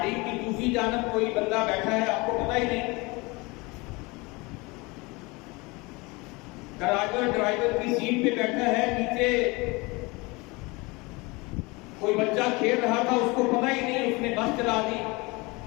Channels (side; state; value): right; quieter; 25.2 dB